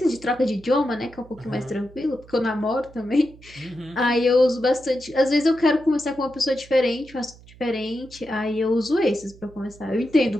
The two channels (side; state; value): right; noise; hum, 22 dB below the sound